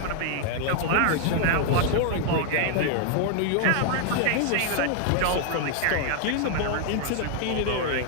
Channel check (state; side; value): different; both; correlation 0.00